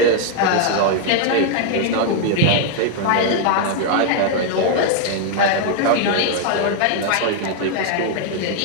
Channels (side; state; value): both; different; correlation 0.00